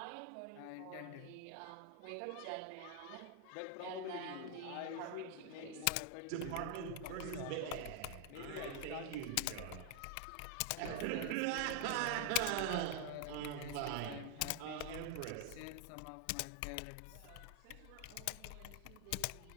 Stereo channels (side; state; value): both; different; correlation 0.00